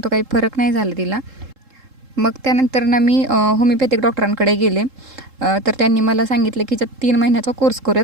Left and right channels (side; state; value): left; late; 3.7 ms